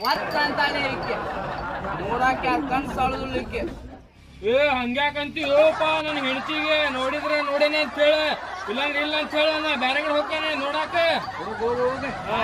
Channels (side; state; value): both; identical; correlation 1.00